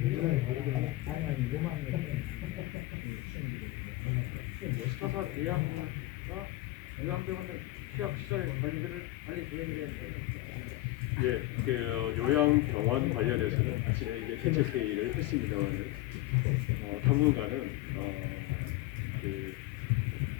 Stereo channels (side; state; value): right; quieter; 17.7 dB